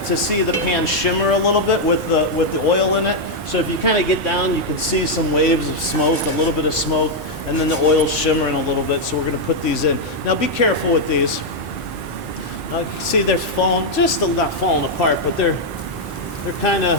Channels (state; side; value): normal; both; correlation -0.01